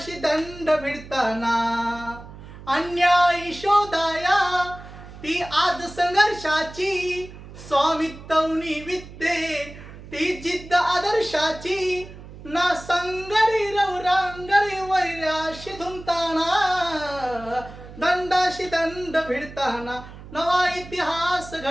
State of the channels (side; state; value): right; noise; hum, 16 dB below the sound